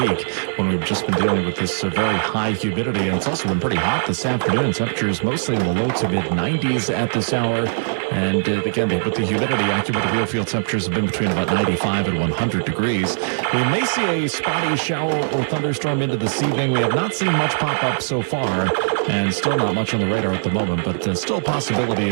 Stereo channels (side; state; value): left; silent; 65 dB below the other